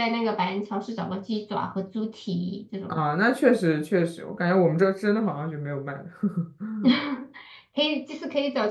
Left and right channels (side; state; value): both; identical; correlation 1.00